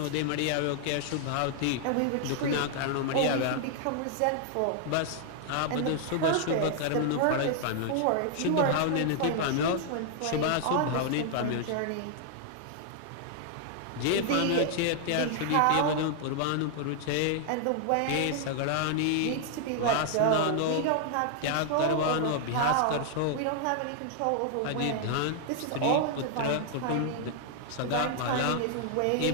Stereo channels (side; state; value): both; different; correlation 0.00